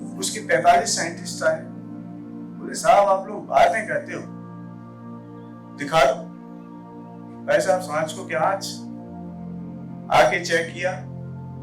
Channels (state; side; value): identical; both; correlation 1.00